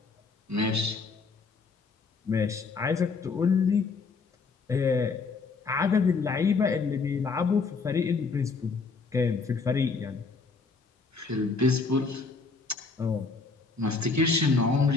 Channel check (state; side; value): quieter; right; 4.5 dB